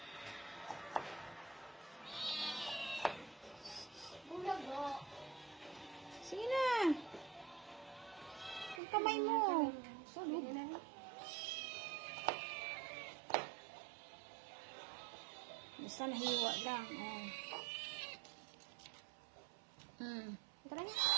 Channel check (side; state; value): left; drops out; at 8.8 s